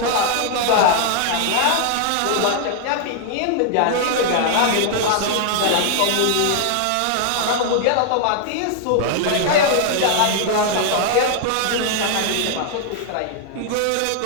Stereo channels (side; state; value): both; different; correlation 0.00